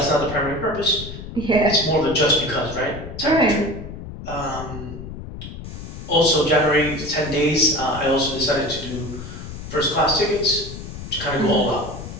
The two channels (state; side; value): noise; left; rumble, 10 dB below the sound